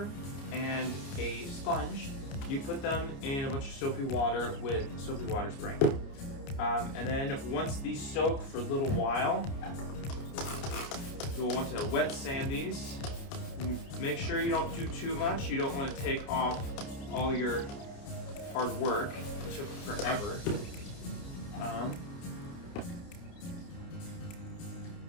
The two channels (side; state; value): right; late; 29 ms